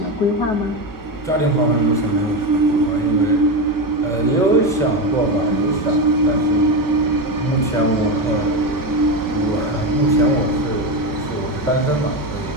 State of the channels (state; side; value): late; right; 5.3 ms